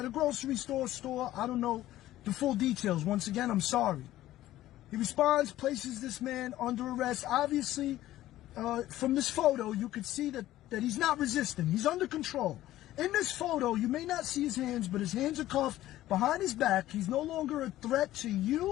a grocery store. I don't know the full details. Once again, I'm sorry. He responds, places this man under arrest. Obviously, from this photo, you could see that he's not resisting. He's under control. In this photo, you may not see his hands, but his hands are cuffed behind his back. He's no longer a threat to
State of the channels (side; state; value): right; quieter; 14.6 dB